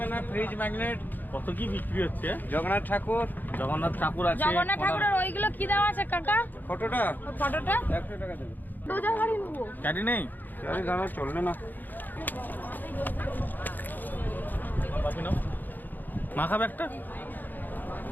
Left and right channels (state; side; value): late; right; 0.087 ms